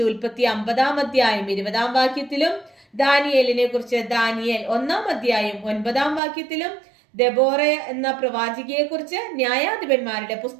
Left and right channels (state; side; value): drops out; left; at 6.2 s